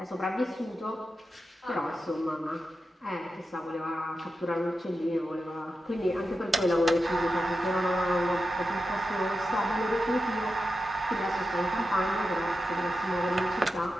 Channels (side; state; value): both; normal; correlation 0.90